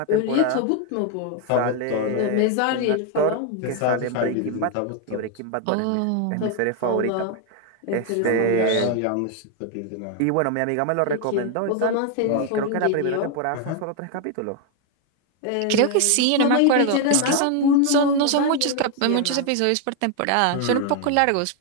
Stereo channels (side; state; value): both; different; correlation 0.01